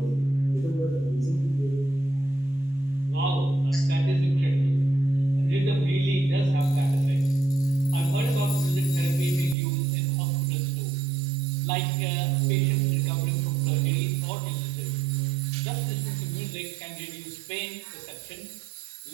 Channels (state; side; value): drops out; left; at 9.6 s